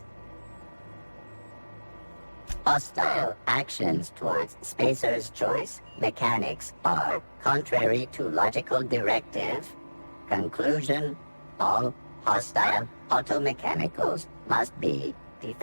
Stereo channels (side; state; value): both; inverted; correlation -1.00